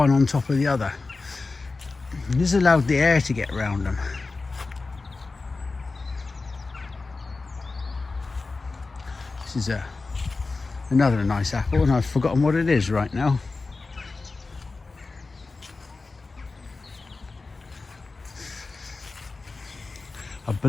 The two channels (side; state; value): right; quieter; 3.8 dB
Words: on top of the other. This allowed the air to get around them. This is another nice apple, and I've forgotten what it is right now. I